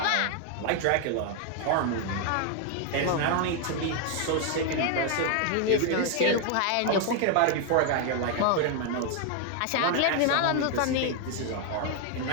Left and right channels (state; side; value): different; both; correlation 0.01